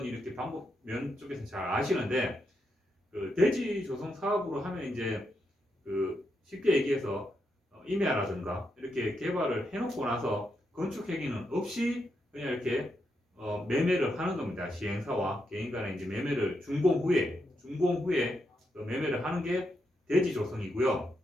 이렇게 방법 면 쪽에서 잘 아시는데 그 대지 조성 사업으로 하면 이제 그 쉽게 얘기해서 임야라든가 이렇게 개발을 해놓고 나서 건축 행위는 없이 그냥 이렇게 매매를 하는 겁니다. 시행사와 개인 간에 이제 매매를 준공 후에 매매를 하는 게 대지 조성이고요.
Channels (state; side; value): normal; both; correlation 0.82